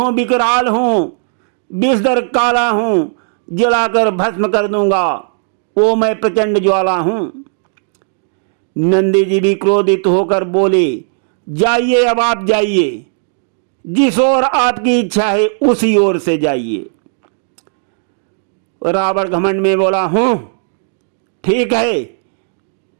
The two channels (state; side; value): silent; left; digital silence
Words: विकराल हूँ, विषधर काला हूँ, जलाकर भस्म कर दूंगा। वो मैं प्रचंड ज्वाला हूँ। नंदी जी भी क्रोधित होकर बोले, जाइए, अब आप जाइए, जिस ओर आपकी इच्छा है उसी ओर से जाइए। रावण घमंड में बोला, हूँ, ठीक है,